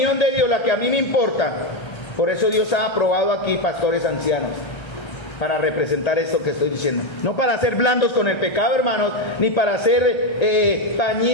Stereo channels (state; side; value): late; right; 1.3 ms